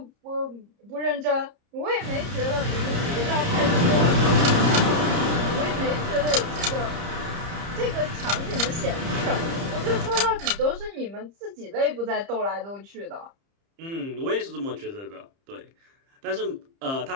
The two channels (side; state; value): left; late; 30 ms